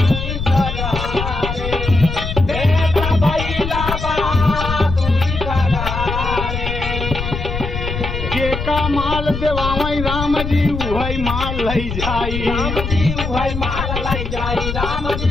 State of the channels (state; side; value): noise; left; rumble, 5 dB below the sound